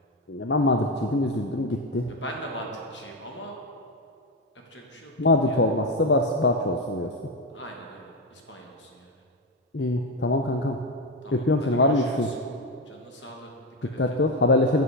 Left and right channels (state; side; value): normal; both; correlation 0.11